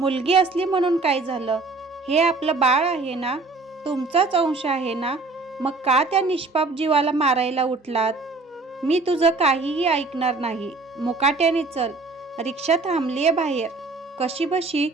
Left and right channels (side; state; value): left; quieter; 3.7 dB